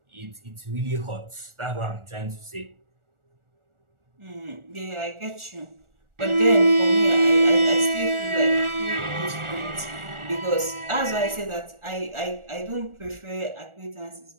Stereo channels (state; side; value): late; left; 1.4 ms